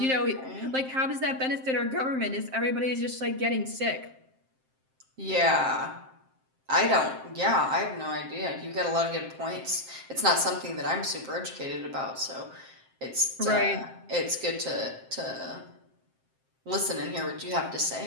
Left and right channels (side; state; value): left; late; 7.6 ms